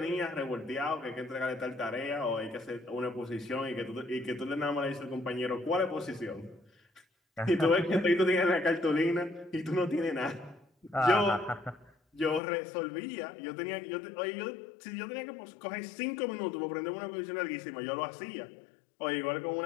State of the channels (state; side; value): drops out; right; at 12.4 s